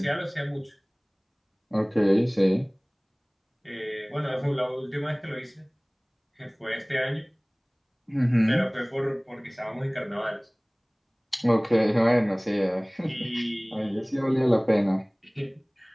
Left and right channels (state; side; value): identical; both; correlation 1.00